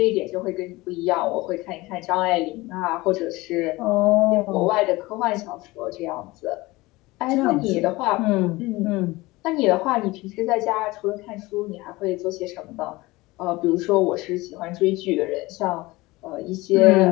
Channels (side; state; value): right; quieter; 20.9 dB